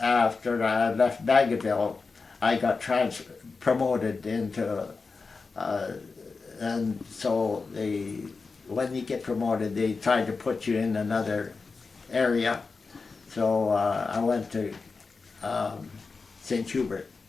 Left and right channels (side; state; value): right; quieter; 4.4 dB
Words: I left Baggaville, I got promoted into, and so when you get promoted, they try to put you in another area. So I went to St. Hubert.